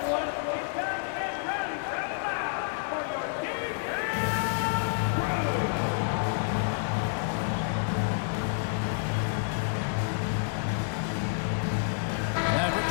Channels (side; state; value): right; silent; digital silence